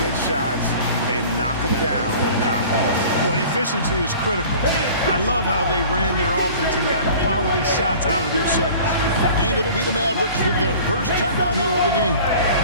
shots, and knock them down with confidence. Well, efficiency is critical. I love how they ran their offense and got quality shots out of their set. And it'll be the Mavericks with their first time out here of the game.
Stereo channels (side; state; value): both; inverted; correlation -0.44